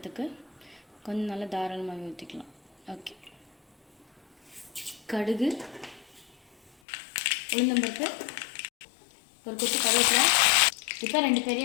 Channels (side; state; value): right; drops out; at 6.7 s